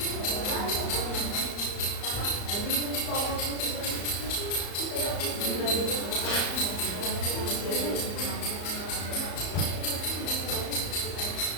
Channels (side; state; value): right; late; 34 ms